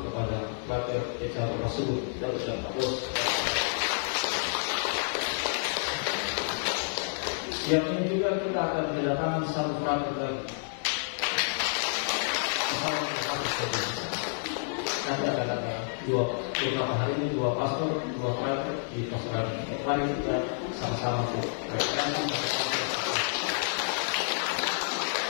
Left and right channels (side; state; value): right; silent; digital silence